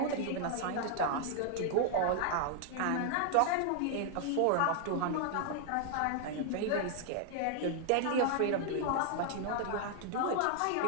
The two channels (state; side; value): different; both; correlation 0.00